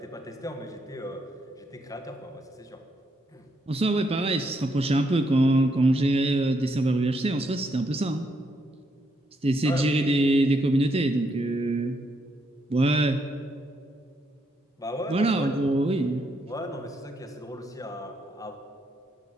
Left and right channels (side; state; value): both; normal; correlation 0.77